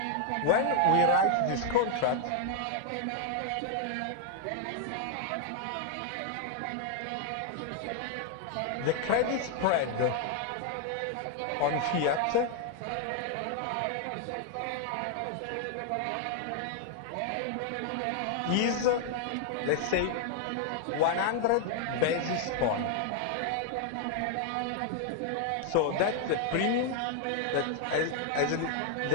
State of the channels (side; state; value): both; different; correlation 0.00